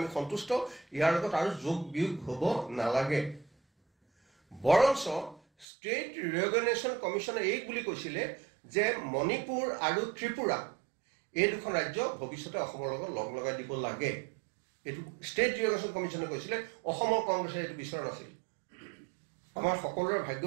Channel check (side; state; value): left; drops out; at 5.7 s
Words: সন্তুষ্ট ইয়াৰ লগত আৰু যোগ বিয়োগ হ'ব নালাগে বৰঞ্চ ষ্টেট ৰিঅৰ্গেনাইজেশ্যন কমিশ্যনে এই বুলি কৈছিলে যে মণিপুৰ আৰু ত্ৰিপুৰা এই দুখন ৰাজ্য ভৱিষ্যতে অসমৰ লগত লগ লগাই দিব লাগে এইটো ষ্টেট ৰিঅৰ্গেনাইজেশ্যন কমিশ্যনে কৈছিলে অসমৰ কংগ্ৰেছে এইটো বিচৰা নাছিল আমাৰ সকলোৰে